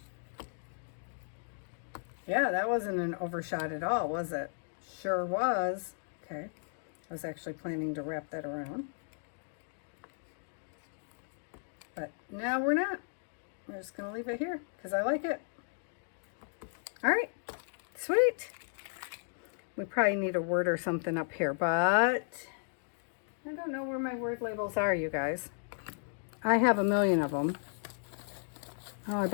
Yeah, that wasn't an overshot at all, was it? Sure was. Okay, I was actually planning to wrap that around. But now we're not. We're just going to leave it here because I like it. All right, sweet. We probably need a word or something up here, but I don't know where my word labels are, you guys. I have a million of them. Oh, I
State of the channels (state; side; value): silent; right; digital silence